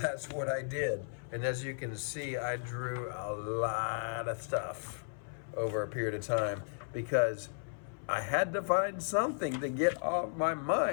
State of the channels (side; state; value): right; silent; 54 dB below the other